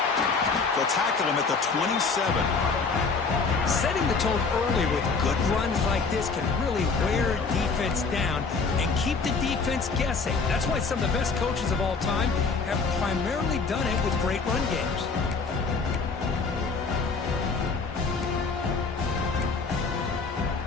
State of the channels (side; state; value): right; quieter; 4.6 dB